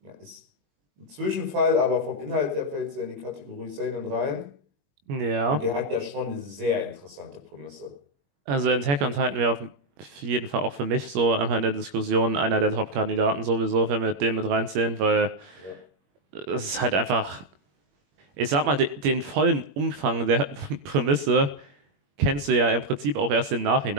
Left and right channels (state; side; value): late; left; 21 ms